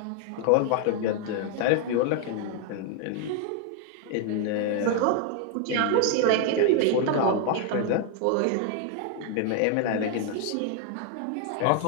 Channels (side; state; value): both; different; correlation 0.00